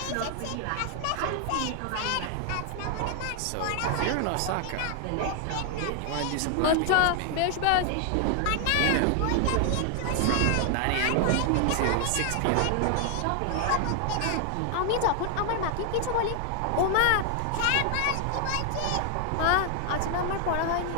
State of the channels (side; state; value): both; different; correlation 0.00